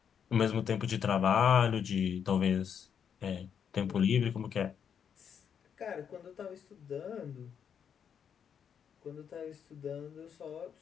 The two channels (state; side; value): quieter; right; 7.8 dB